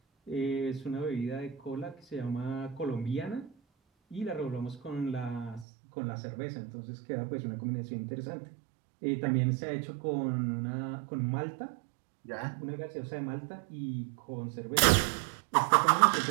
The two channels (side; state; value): left; drops out; at 5.7 s